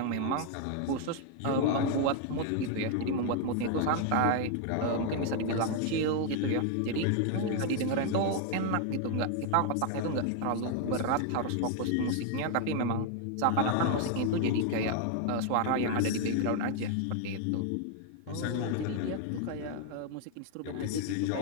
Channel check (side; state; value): both; different; correlation 0.00